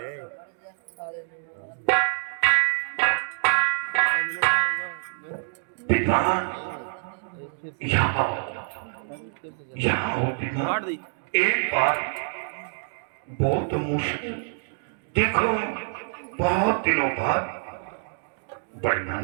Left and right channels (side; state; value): left; silent; digital silence